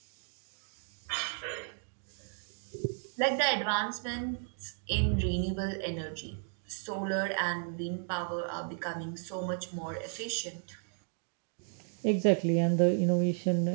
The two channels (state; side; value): silent; left; 55 dB below the other